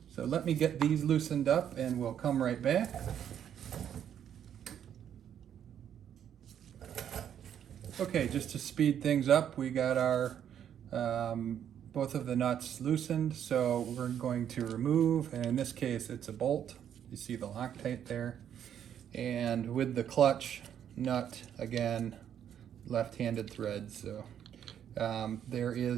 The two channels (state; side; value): quieter; left; 9.4 dB